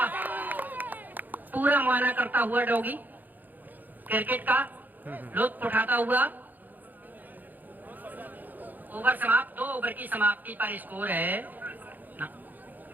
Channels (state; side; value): late; left; 0.085 ms